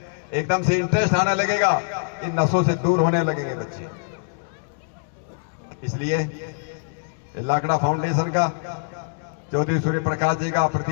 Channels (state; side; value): silent; right; digital silence